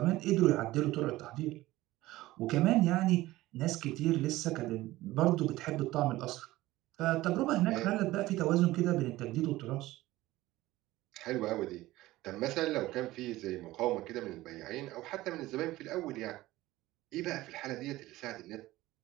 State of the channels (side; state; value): left; quieter; 17.4 dB